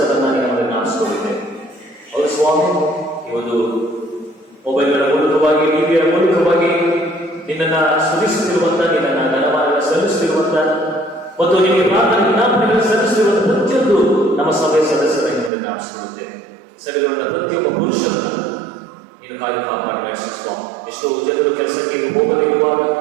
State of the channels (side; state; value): left; drops out; at 15.5 s